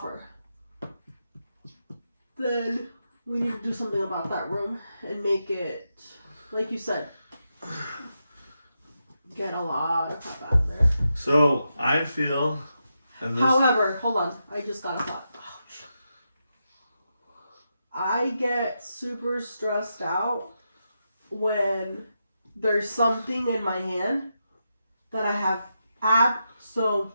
Then we need to do something about that room and make it, like you said, get a lot of crap out of there. So I feel. And this, However, hold on. I just got a thought. Ouch. I get super stressed out when there's something in my hand that I have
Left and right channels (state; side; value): inverted; both; correlation -0.86